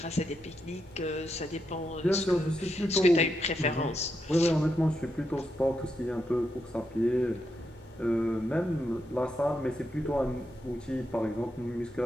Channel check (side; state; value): both; normal; correlation 0.83